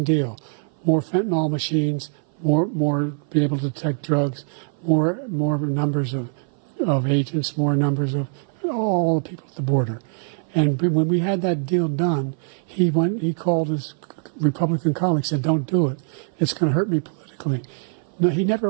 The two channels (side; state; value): left; silent; 57 dB below the other